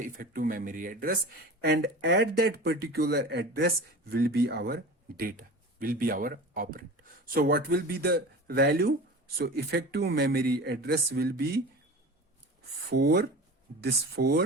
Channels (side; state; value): both; normal; correlation 0.34